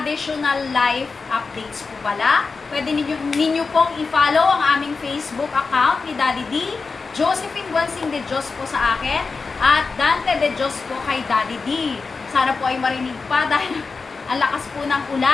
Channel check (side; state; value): right; quieter; 4.4 dB